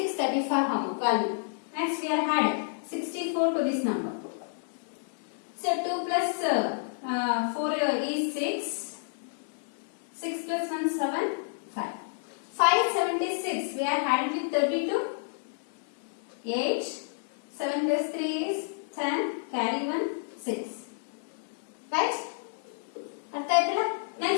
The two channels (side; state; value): right; silent; digital silence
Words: value. Next we are adding 64 to this number. So 2 plus 4 is 6. 6 plus 1 7, 5. 576 we are adding with 32. 8. 7 plus 3 is 10. Carry 1, 6. Right?